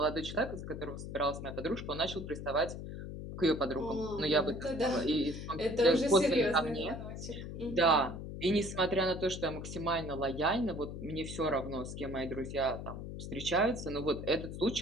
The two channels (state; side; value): noise; left; hum, 8 dB below the sound